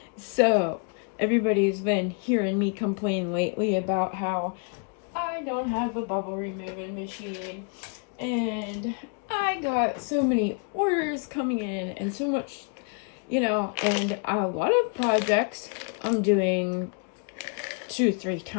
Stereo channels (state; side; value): quieter; right; 37.7 dB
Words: So, everybody's been hearing me complain lately about how I don't have a bubble removing machine. And I got so many orders coming in and so much, and a lot of projects I'm doing 2-3